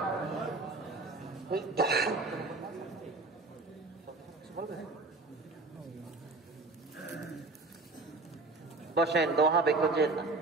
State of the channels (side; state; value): left; quieter; 3.4 dB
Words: বসেন, দোয়া বেকুজেন না।